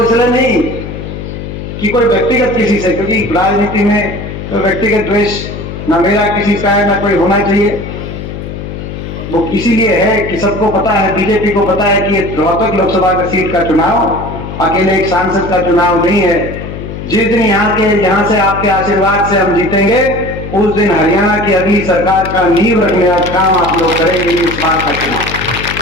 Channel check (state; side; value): noise; left; hum, 8 dB below the sound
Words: इसलिए नहीं कि कोई व्यक्तिगत किसी से, क्योंकि राजनीति में तो व्यक्तिगत द्वेष ना मेरा किसी का है ना कोई होना चाहिए। वो इसीलिए है कि सबको पता है, बीजेपी को पता है कि रोहतक लोकसभा का सीट का चुनाव अकेले एक सांसद का चुनाव नहीं है। जिस दिन यहाँ से आपके आशीर्वाद से हम जीतेंगे, उस दिन हरियाणा की अगली सरकार का नींव रखने का काम आप लोग करेंगे। इस बार का चुनाव